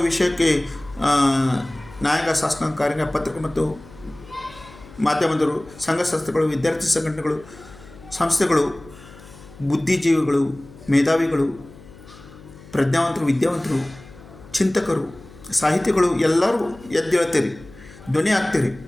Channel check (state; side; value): noise; left; hum, 20 dB below the sound